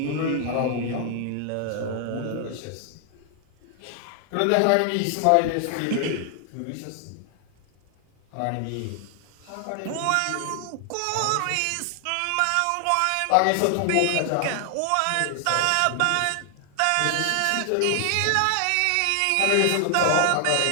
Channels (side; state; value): both; different; correlation 0.00